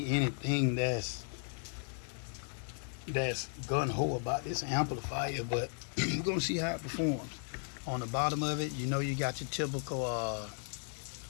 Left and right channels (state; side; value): silent; right; 54 dB below the other